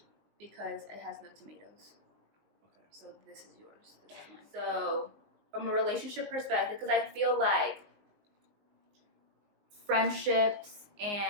Because it has no tomatoes. Okay. So this is yours. This is mine. So from a relationship perspective, because I feel like friendships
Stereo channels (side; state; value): left; late; 20 ms